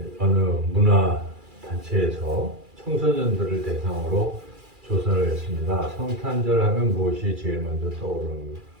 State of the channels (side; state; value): left; late; 2.4 ms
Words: 어느 문화단체에서 청소년들을 대상으로 조사를 했습니다. 성탄절 하면 무엇이 제일 먼저